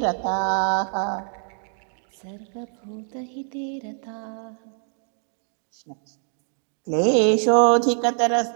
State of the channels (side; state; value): left; silent; 60 dB below the other